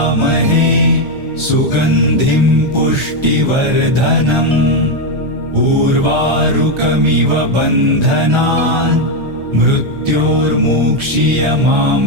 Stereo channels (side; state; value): left; late; 1.3 ms